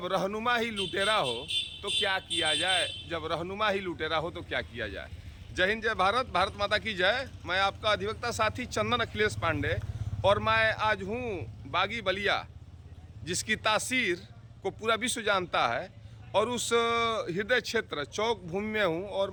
रहनुमा ही लुटेरा हो तो क्या किया जाए। जब रहनुमा ही लुटेरा हो तो क्या किया जाए। जय हिंद, जय भारत, भारत माता की जय। मैं आपका अधिवक्ता साथी चंदन अखिलेश पांडे, और मैं आज हूँ बागी बलिया, जिसकी तासीर को पूरा विश्व जानता है, और उस हृदय क्षेत्र चौक भूमि में हूँ। और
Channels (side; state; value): both; identical; correlation 1.00